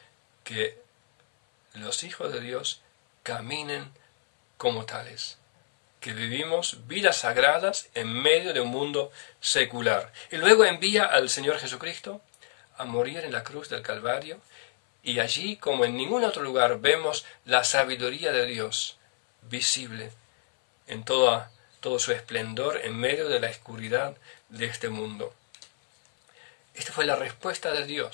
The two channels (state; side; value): silent; right; 60 dB below the other